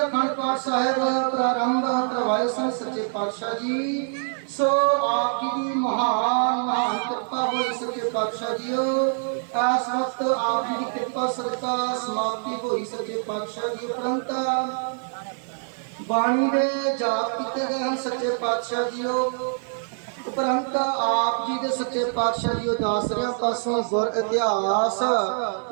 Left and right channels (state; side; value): silent; left; 58 dB below the other